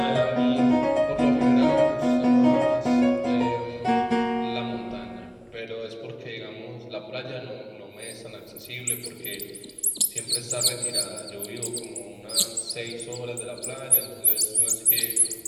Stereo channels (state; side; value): identical; both; correlation 1.00